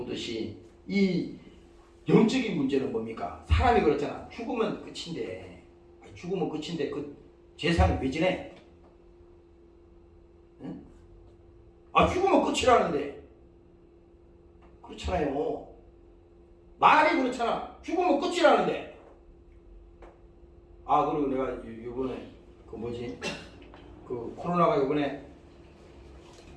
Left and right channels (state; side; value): identical; both; correlation 1.00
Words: 이 영적인 문제는 뭡니까? 사람이 그렇잖아. 죽으면 끝인데 그 재산이 왜 지내? 응? 아, 죽으면 끝이라는데. 그렇잖아요. 말이 그렇잖아. 죽으면 끝이라는데. 아, 그리고 내가 요번에 그 뭐지? 그 코로나가 요번에